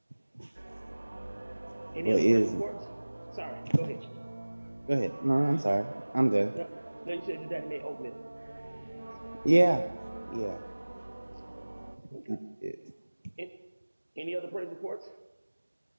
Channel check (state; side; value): inverted; both; correlation -1.00